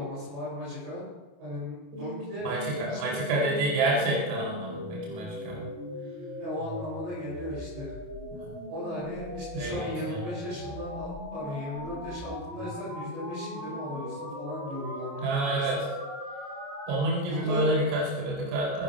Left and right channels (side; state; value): left; late; 29 ms